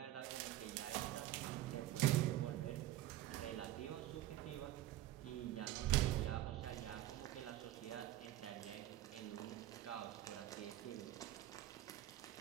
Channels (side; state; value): left; quieter; 14.4 dB